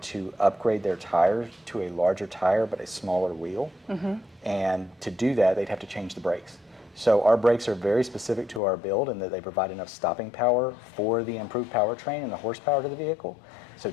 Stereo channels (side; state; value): right; drops out; at 8.6 s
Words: to upgrade their tires to a larger tire but a smaller wheel. Mm-hmm. And to do that, they'd have to change the brakes. So our brakes are very specific to our build in that they provide enough stopping power for the improved powertrain and the horsepower to the vehicle. So